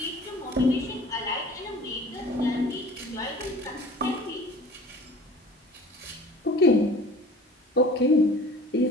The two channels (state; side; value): normal; both; correlation 0.45